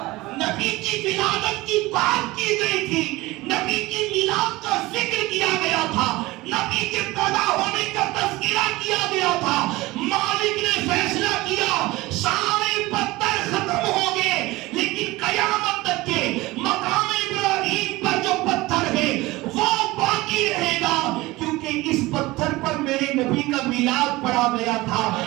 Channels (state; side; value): quieter; left; 20.1 dB